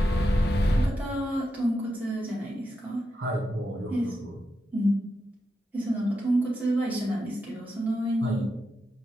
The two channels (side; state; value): both; normal; correlation 0.87